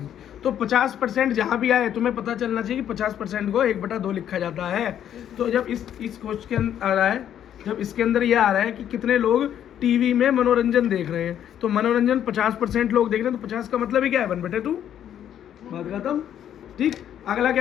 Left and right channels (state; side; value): quieter; right; 10.1 dB